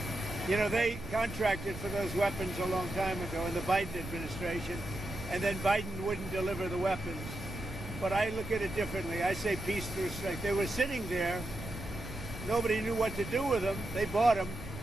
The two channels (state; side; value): noise; right; rumble, 11 dB below the sound